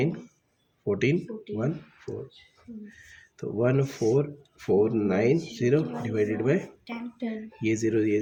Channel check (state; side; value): identical; both; correlation 1.00